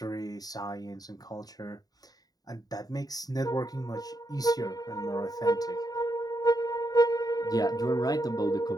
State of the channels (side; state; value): right; late; 0.18 ms